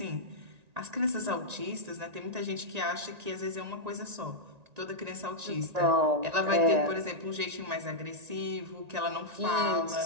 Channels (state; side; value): late; left; 1.9 ms